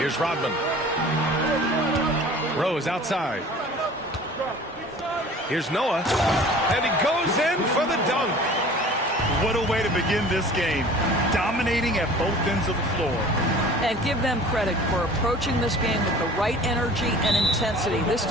Rodman. Rose outside. Here's Noah, and he goes in for the dunk. What a way to begin this game. Dominating at both ends of the floor. And give them credit for approaching this game with the right energy and intensity. This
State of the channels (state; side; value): normal; both; correlation 0.45